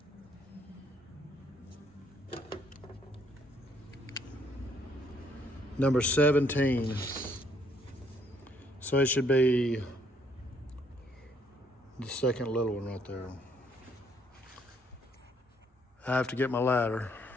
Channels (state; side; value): normal; both; correlation 0.67